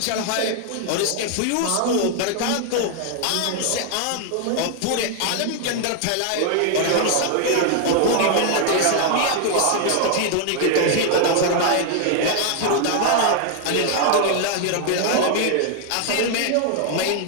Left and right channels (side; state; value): both; different; correlation 0.00